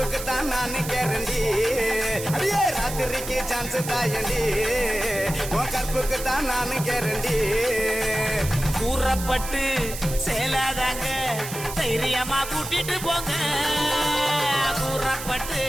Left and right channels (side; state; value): right; noise; hiss, 9 dB below the sound